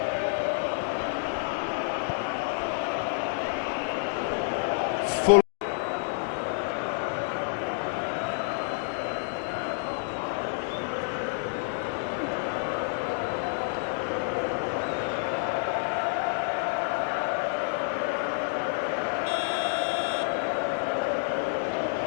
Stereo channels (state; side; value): silent; right; digital silence